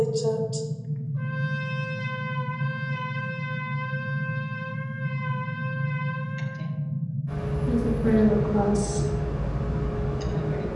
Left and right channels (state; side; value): identical; both; correlation 1.00